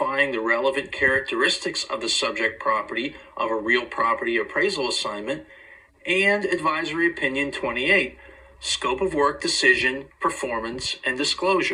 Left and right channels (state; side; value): identical; both; correlation 1.00